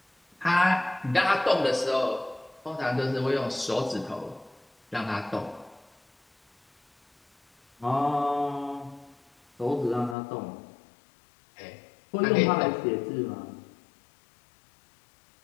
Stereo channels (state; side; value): drops out; right; at 10.2 s